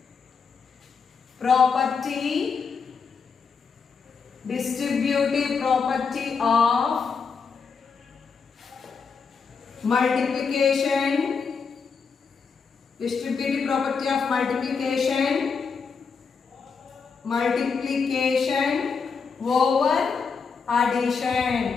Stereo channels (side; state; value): right; quieter; 5.5 dB